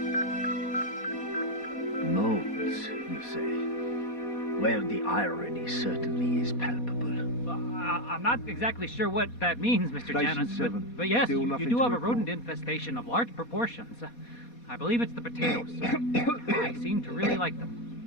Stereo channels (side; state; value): right; late; 4.2 ms